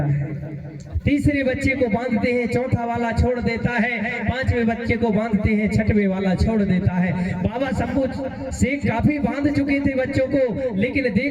है, तीसरे बच्चे को बांधते हैं, चौथा वाला छोड़ देता है, पांचवें बच्चे को बांधते हैं, छठवें वाला छोड़ देता है। बाबा शंभू शेख काफी बांध चुके थे बच्चों को, लेकिन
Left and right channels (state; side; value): identical; both; correlation 1.00